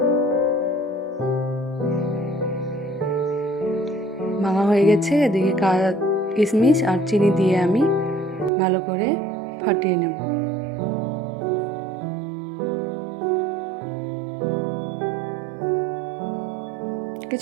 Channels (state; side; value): drops out; left; at 8.5 s